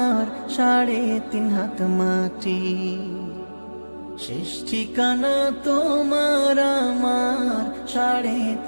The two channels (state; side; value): inverted; both; correlation -1.00